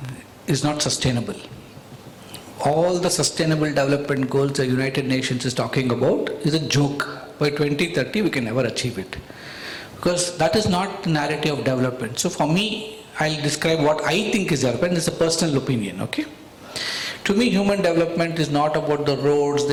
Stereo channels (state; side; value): identical; both; correlation 1.00